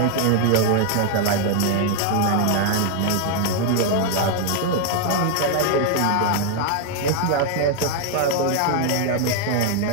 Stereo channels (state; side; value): different; both; correlation 0.00